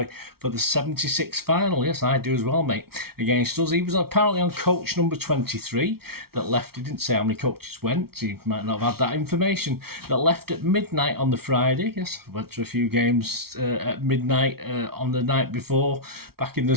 for the 76 final. Yes, I do as well, mate, against us. He was apparently on coach number 23 that left. He didn't say how many coaches went. He might not have had that information. That left at midnight on the Friday. Yes, I went to a few games at midnight on the night before, back in the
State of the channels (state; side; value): late; left; 0.94 ms